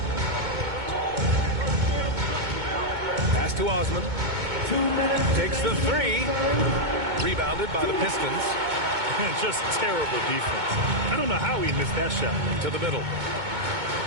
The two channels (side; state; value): left; late; 2.2 ms